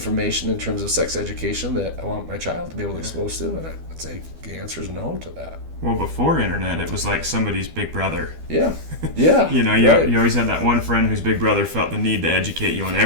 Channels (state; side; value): late; left; 12 ms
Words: in terms of sex education that I want my child to be able to expose to? And I'd say the answer is no to that. Well, before internet, it was like somebody's big brother. Yeah. You Right. you always had that one friend whose big brother felt the need to educate you on